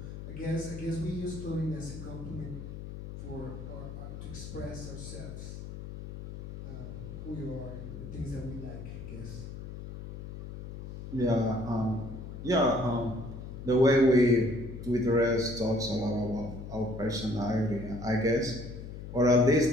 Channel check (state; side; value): noise; left; hum, 10 dB below the sound